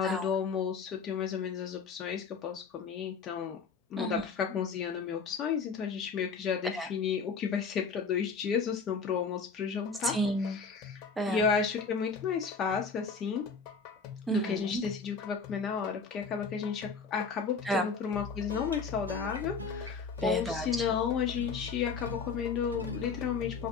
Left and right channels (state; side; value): quieter; right; 5.0 dB